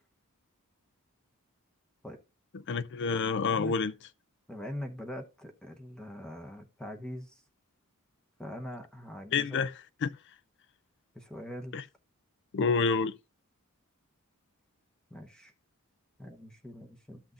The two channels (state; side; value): quieter; right; 4.2 dB